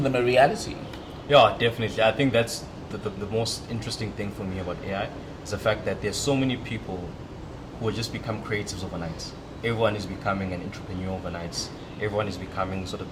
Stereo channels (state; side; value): identical; both; correlation 1.00